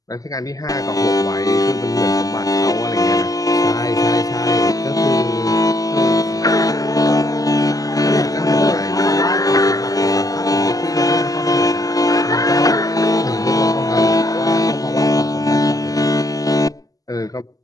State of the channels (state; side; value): late; right; 0.17 ms